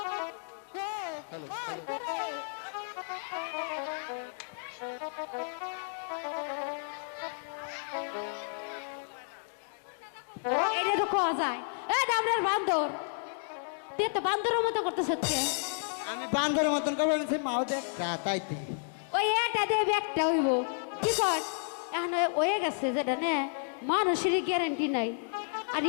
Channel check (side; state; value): right; silent; digital silence